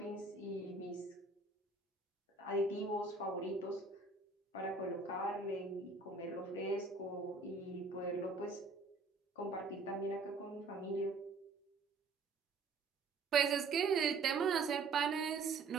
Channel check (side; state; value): left; quieter; 4.0 dB